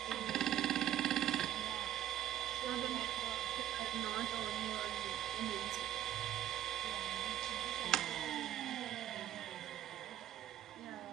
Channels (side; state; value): left; quieter; 11.9 dB